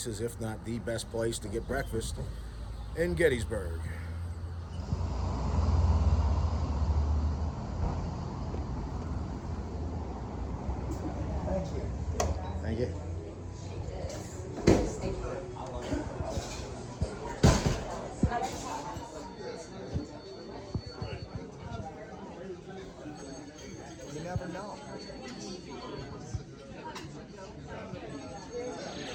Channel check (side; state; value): both; identical; correlation 1.00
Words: if not the best place to get breakfast in Gettysburg. Thank you. You never know.